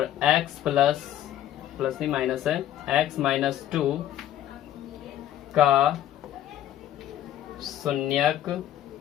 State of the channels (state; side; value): quieter; right; 12.0 dB